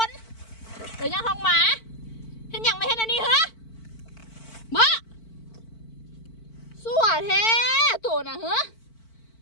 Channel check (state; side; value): late; right; 4.5 ms